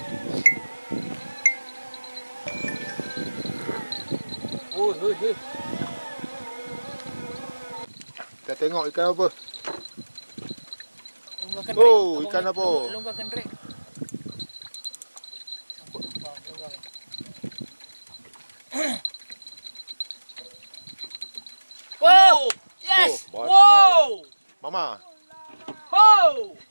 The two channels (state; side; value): inverted; both; correlation -1.00